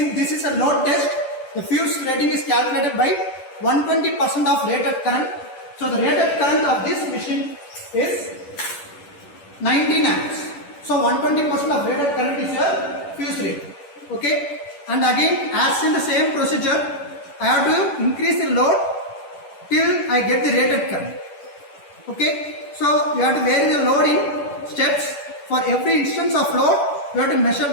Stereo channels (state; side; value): late; right; 10 ms